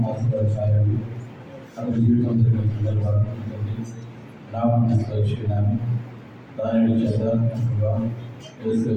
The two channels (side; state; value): both; identical; correlation 1.00